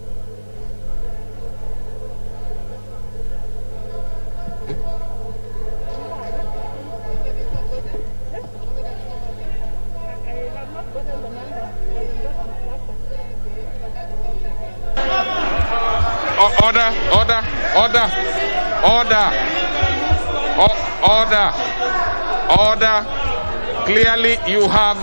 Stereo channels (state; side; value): inverted; both; correlation -1.00